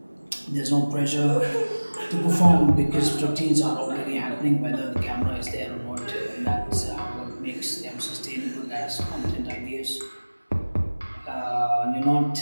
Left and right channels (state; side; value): inverted; both; correlation -1.00